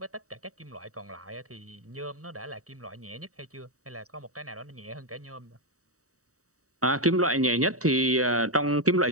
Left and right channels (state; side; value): late; left; 0.65 ms